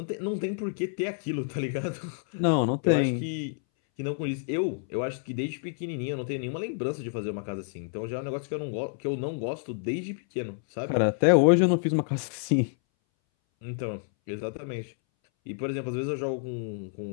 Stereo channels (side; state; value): right; silent; 59 dB below the other